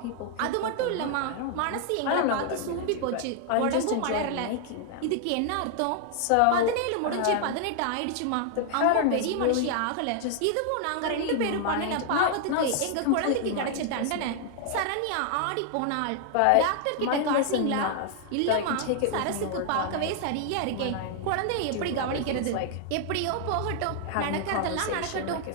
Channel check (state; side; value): different; both; correlation 0.00